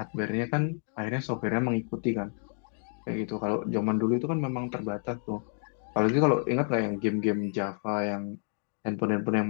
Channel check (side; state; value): right; silent; 58 dB below the other